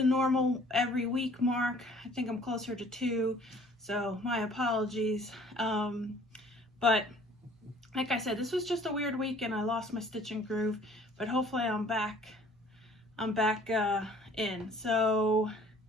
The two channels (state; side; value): normal; both; correlation 0.54